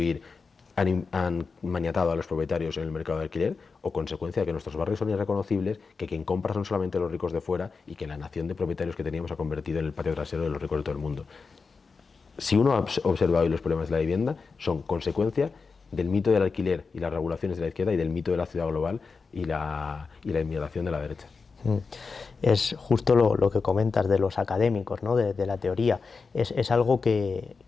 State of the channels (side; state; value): right; quieter; 4.7 dB